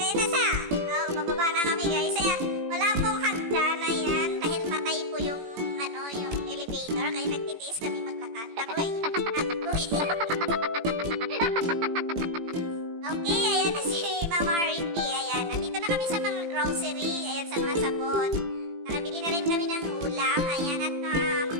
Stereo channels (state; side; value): late; left; 18 ms